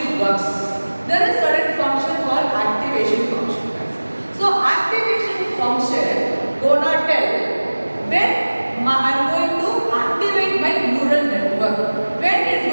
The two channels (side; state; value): both; inverted; correlation -1.00